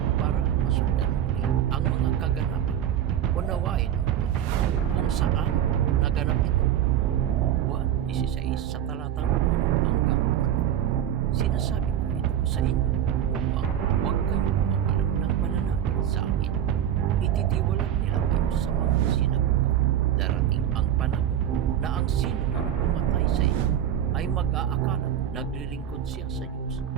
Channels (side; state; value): left; quieter; 10.3 dB